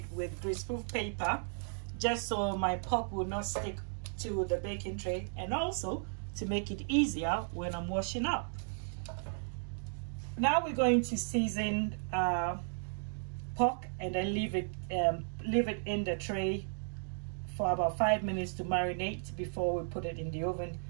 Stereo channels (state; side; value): silent; left; digital silence